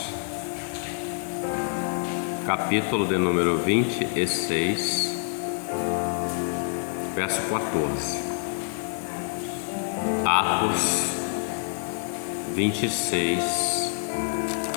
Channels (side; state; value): right; silent; 61 dB below the other